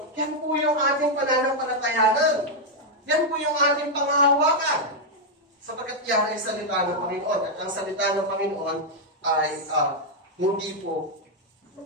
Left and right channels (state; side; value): normal; both; correlation -0.01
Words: yan po yung ating pananampalatayanan. Yan po yung ating panghahawakan. Sapagkat yan ay salita ng Panginoon. At ang salita ng Panginoon ay hindi po